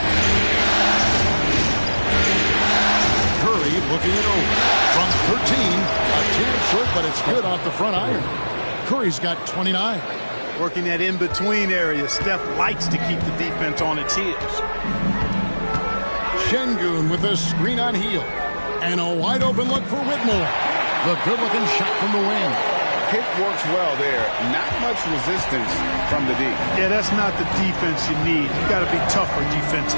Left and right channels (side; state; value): both; inverted; correlation -1.00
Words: Curry looking it over. From 13, a tad short, but it's good off the front iron. Curry's got 29. Working that in-between area. Steph likes to keep the defense on its heels. Şengün with a screen on Hield. And a wide-open look for Whitmore. The good-looking shot from the wing. Pick works well there. Not much resistance from the D. Yeah, that's not the defense you need. You got to be tougher